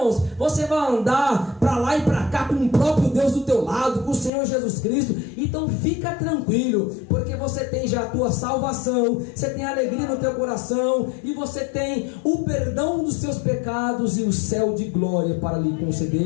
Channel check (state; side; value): drops out; right; at 4.3 s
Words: você vai andar para lá e para cá com o próprio Deus do teu lado, com o Senhor Jesus Cristo. Então fica tranquilo, porque você tem já a tua salvação, você tem alegria no teu coração, e você tem o perdão dos seus pecados e o céu de glória para lhe